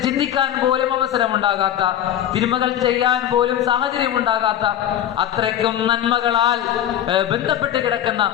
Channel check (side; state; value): right; quieter; 11.0 dB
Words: ചിന്തിക്കാൻ പോലും അവസരമുണ്ടാകാത്ത, തിന്മകൾ ചെയ്യാൻ പോലും സാഹചര്യം ഉണ്ടാകാത്ത, അത്രയ്ക്കും നന്മകളാൽ ബന്ധപ്പെട്ട് കിടക്കുന്ന